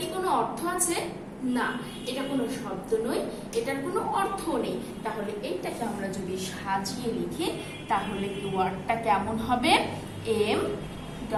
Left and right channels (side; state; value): both; identical; correlation 1.00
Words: কোনো অর্থ আছে? না, এটা কোনো শব্দ নয়, এটার কোনো অর্থ নেই। তাহলে এইটাকে আমরা যদি সাজিয়ে লিখি তাহলে কি ওয়ার্ডটা কেমন হবে? M